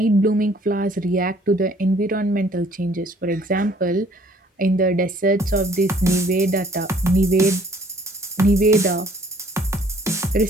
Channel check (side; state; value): both; normal; correlation 0.59